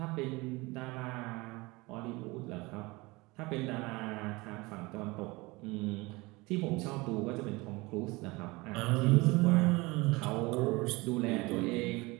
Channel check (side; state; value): left; quieter; 23.5 dB